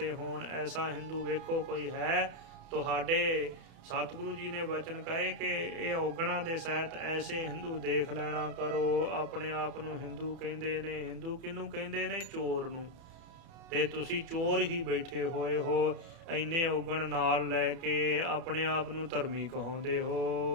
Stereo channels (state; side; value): late; left; 33 ms